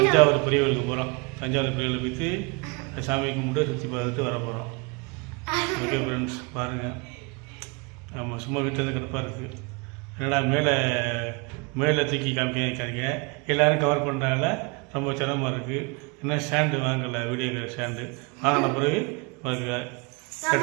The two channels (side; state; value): left; quieter; 30.5 dB